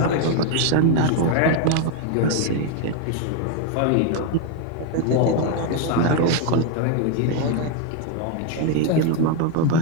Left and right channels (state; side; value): different; both; correlation 0.01